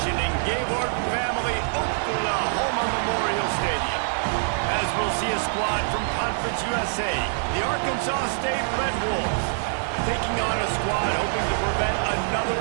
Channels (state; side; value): silent; left; digital silence